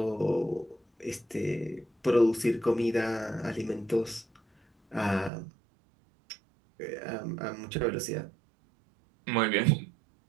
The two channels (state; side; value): drops out; left; at 5.3 s